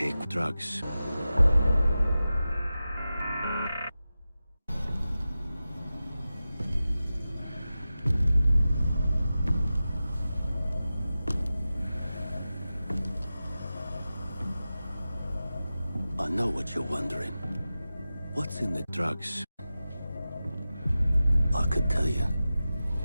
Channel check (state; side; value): inverted; both; correlation -0.94